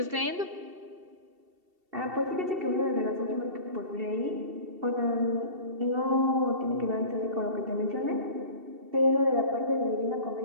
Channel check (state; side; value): late; left; 2.7 ms